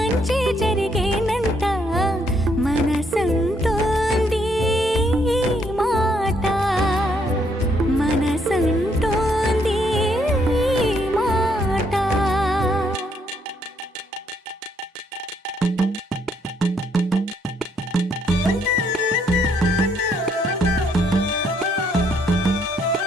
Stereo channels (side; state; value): both; normal; correlation 0.71